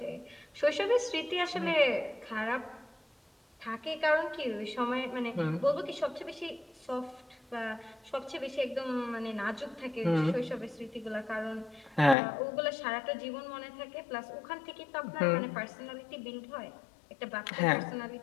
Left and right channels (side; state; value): right; drops out; at 12.2 s